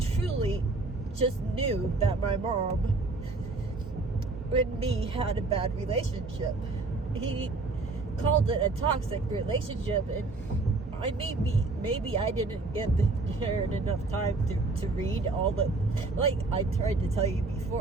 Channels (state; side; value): quieter; left; 3.5 dB